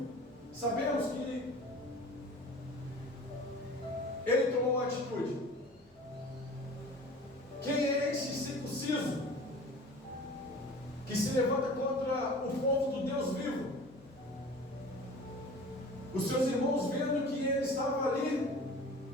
Sabemos que ele tomou uma atitude. Quem é esse circunciso que se levanta contra o povo do Deus vivo? Os seus irmãos, vendo que ele estava ali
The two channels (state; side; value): normal; both; correlation 0.41